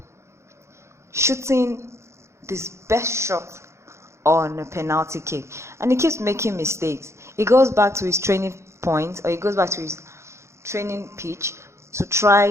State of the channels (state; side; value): late; left; 0.13 ms